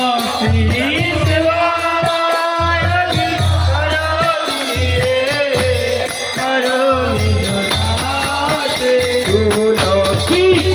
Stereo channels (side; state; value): both; identical; correlation 1.00